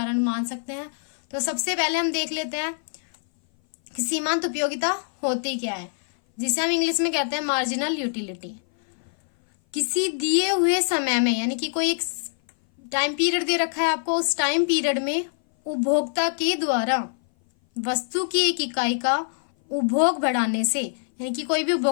मान सकते हैं। तो सबसे पहले हम देख लेते हैं कि सीमांत उपयोगिता होती क्या है, जिसे हम इंग्लिश में कहते हैं मार्जिनल यूटिलिटी। किसी दिए हुए समय में, यानी कि कोई एक टाइम पीरियड दे रखा है आपको, उस टाइम पीरियड में उपभोक्ता के द्वारा वस्तु की एक इकाई का उपभोग बढ़ाने से, यानी कि कोई भी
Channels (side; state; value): right; silent; 58 dB below the other